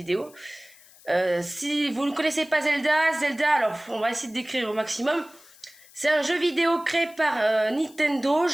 Si vous ne connaissez pas Zelda, alors on va essayer de décrire au maximum. C'est un jeu vidéo créé par Nintendo,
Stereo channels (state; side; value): noise; left; hiss, 25 dB below the sound